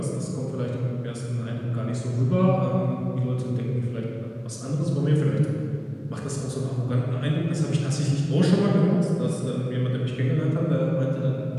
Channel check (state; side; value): identical; both; correlation 1.00